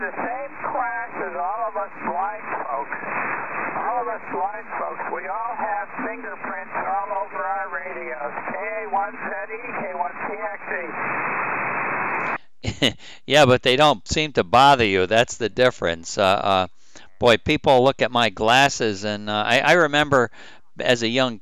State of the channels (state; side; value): identical; both; correlation 1.00